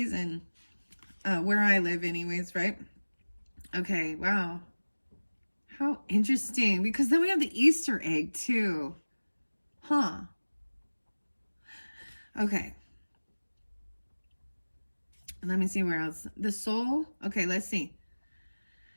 Where I live anyways, right? Okay, wow. How interesting. Because then we have the Easter egg too. Huh. Okay. Let me see where else. The soul. Okay, let's see.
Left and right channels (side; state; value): both; inverted; correlation -1.00